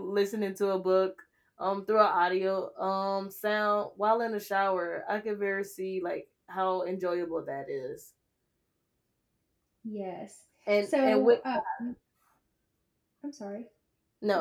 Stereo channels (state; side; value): identical; both; correlation 1.00